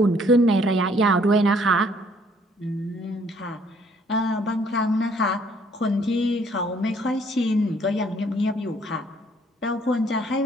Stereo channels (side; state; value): both; normal; correlation 0.63